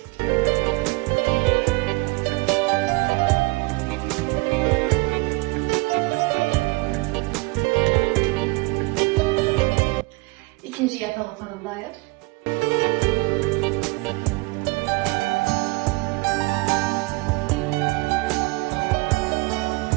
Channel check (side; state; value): left; quieter; 25.4 dB